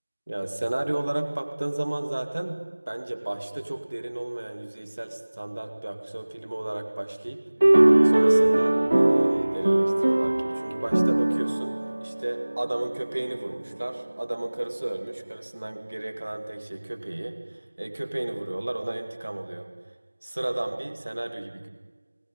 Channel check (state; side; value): inverted; both; correlation -1.00